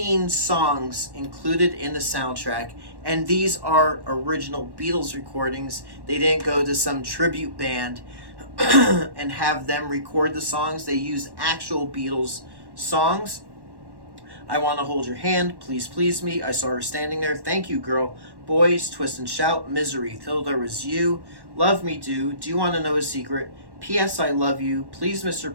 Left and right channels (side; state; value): left; late; 1.1 ms